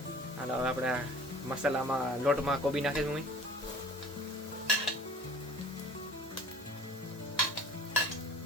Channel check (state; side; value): normal; both; correlation 0.46